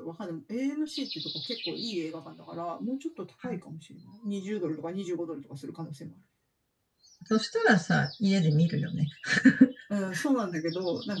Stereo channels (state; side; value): identical; both; correlation 1.00